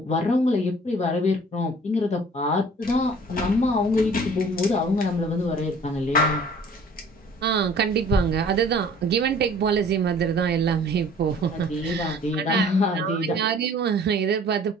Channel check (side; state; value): both; normal; correlation 0.51